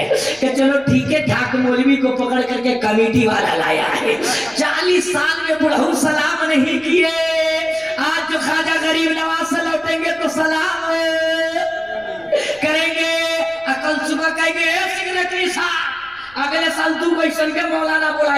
कि चलो ठीक है, ठाक मौलवी को पकड़ करके कमेटी वाला लाया है। 40 साल में बुढ़ऊ सलाम नहीं किए, आज जो ख्वाजा गरीब नवाज से लौटेंगे तो सलाम करेंगे। कल सुबह कहेंगे सिग्नेटरी साहब अगले साल तू बैसन के मौलाना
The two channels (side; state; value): left; noise; rumble, 29 dB below the sound